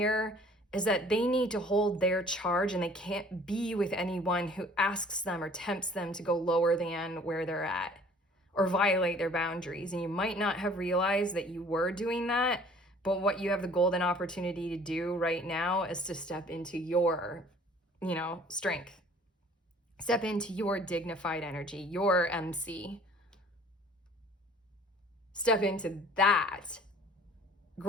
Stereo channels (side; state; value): both; normal; correlation 0.52